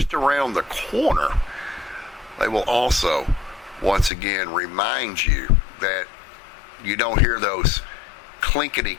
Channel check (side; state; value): right; drops out; at 4.1 s